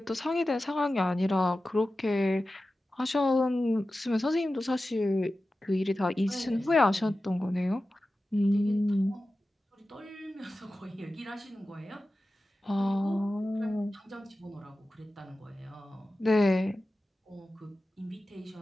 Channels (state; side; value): normal; both; correlation 0.94